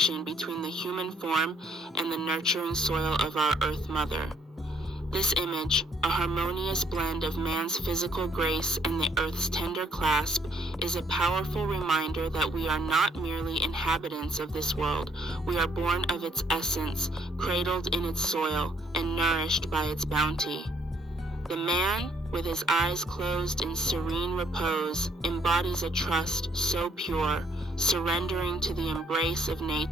between the human form and the nurturing soil of our Earth Mother. This image, a harmonious blend of man's physical grace and the Earth's tender clasp, is a powerful reminder that we are not merely inhabitants of this world. We are born of its essence, cradled in its soil, and nourished by its bounty. The man, with his eyes closed in serene repose, embodies a trust so pure, surrendering to the embrace of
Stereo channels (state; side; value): normal; both; correlation 0.67